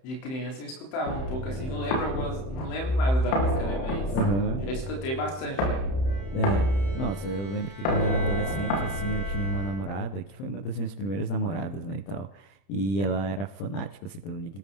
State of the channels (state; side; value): late; right; 31 ms